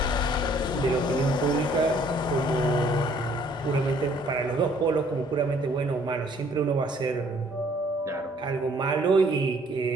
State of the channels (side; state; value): both; normal; correlation 0.61